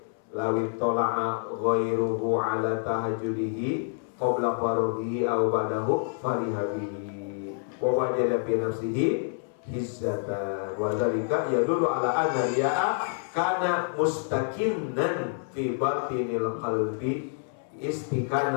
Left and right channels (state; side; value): silent; right; 60 dB below the other